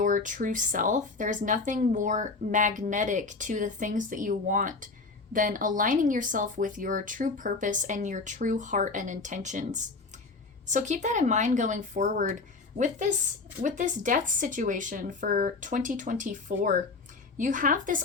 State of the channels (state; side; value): quieter; right; 3.9 dB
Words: true self, there's nothing more magnetic to the things that you want than aligning yourself with your true purpose and your true heart and intentions. So keep that in mind going forward. With this death situation for 2024, you have this